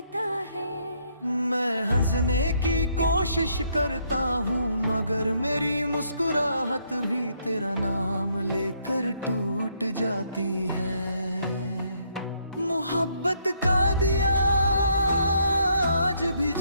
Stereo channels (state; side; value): inverted; both; correlation -0.71